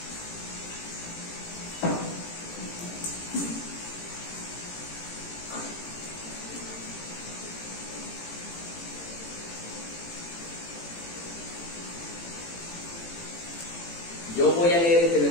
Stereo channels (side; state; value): right; late; 18 ms